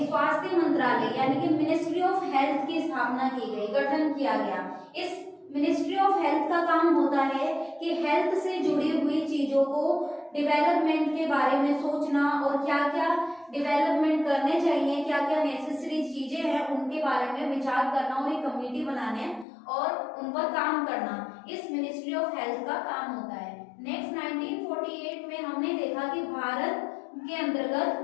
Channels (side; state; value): right; drops out; at 19.5 s